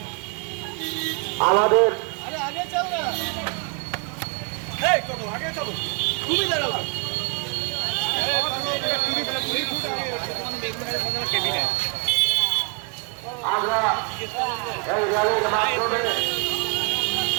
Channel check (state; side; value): quieter; left; 36.5 dB